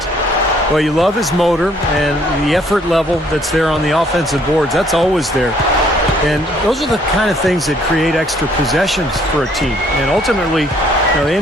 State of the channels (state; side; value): normal; both; correlation 0.63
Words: Well, you love his motor and the effort level that's there on the offensive boards. That's always there. And those are the kind of things that create extra possessions for a team. And ultimately, the